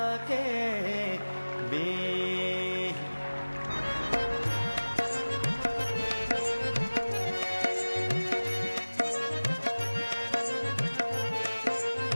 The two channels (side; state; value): both; inverted; correlation -1.00